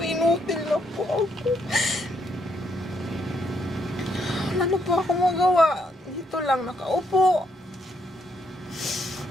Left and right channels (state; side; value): normal; both; correlation 0.74